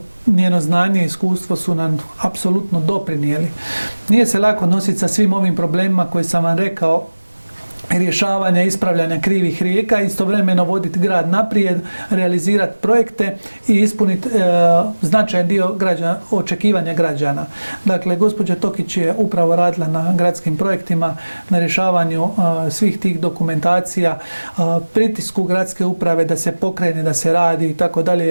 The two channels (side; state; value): both; inverted; correlation -1.00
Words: njeno znanje i iskustvo su nam apsolutno doprinijeli. Nije se lako nositi sa svim ovim problemima koje sam vam rekao, rješavanja, ispravljanja krivih rijeka, istovremeno voditi grad naprijed, realizirati projekte i ispuniti značajan dio očekivanja građana. Dakle, gospođa Tokić je upravo radila na gradskim projektima, na rješavanju svih tih dokumentacija, pritisku gradske uprave da se pokrene, da se radi i tako